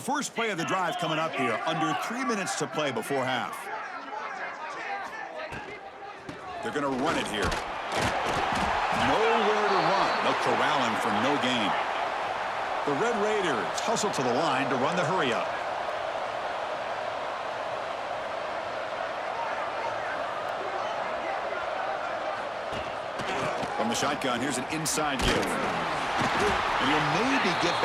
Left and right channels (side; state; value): both; identical; correlation 1.00